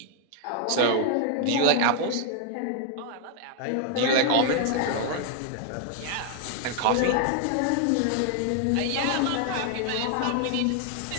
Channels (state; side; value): different; both; correlation 0.00